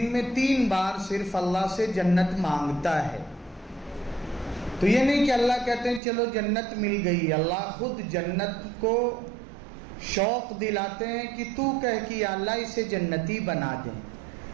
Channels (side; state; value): left; drops out; at 6.0 s